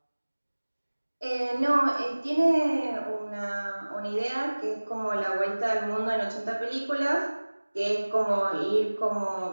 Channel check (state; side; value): inverted; both; correlation -1.00